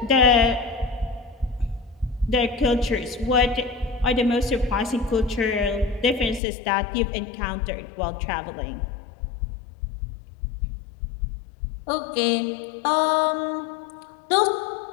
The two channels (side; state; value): right; drops out; at 6.4 s